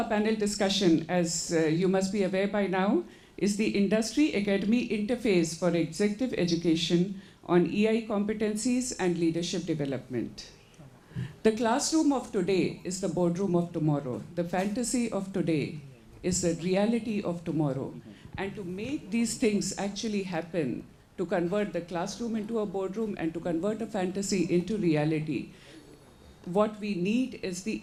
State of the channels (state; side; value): identical; both; correlation 1.00